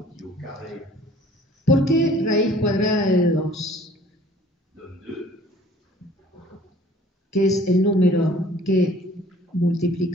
qui au carré ¿Por qué raíz cuadrada de 2? donne 2? Que es el número que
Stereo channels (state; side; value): normal; both; correlation 0.53